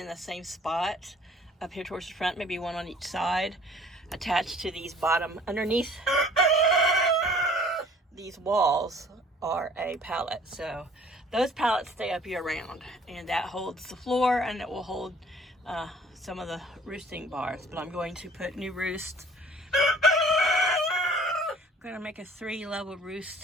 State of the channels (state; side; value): normal; both; correlation 0.52